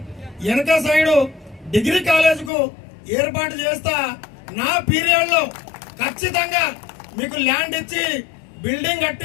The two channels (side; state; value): right; drops out; at 2.5 s